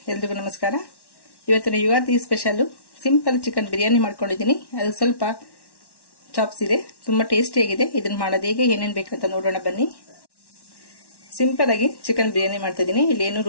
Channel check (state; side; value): late; right; 1.1 ms